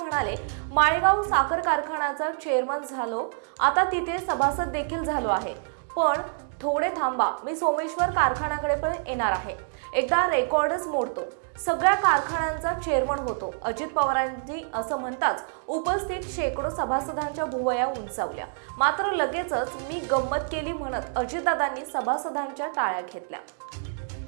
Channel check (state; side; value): silent; left; digital silence